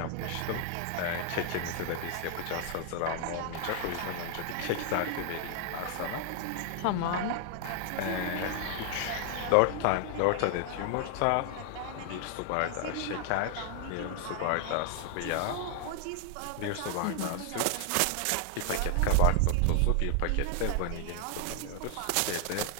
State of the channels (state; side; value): different; both; correlation 0.00